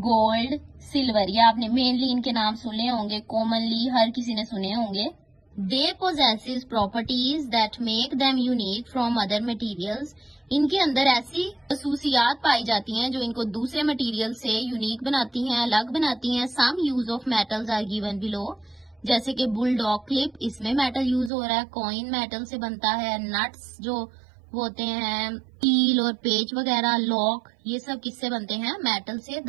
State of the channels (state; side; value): drops out; left; at 21.3 s